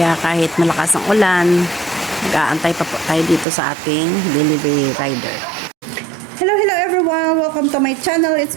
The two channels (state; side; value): drops out; left; at 3.5 s